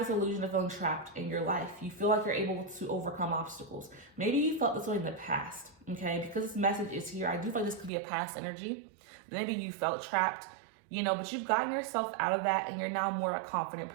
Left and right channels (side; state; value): left; drops out; at 7.9 s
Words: illusion of feeling trapped in your life. You feel like you're able to overcome obstacles. Maybe you felt this way in the past, okay? Because this message is here, I do feel like this could be a past energy. Maybe you felt trapped, you know, but you've gotten yourself out of that and you're now more a confident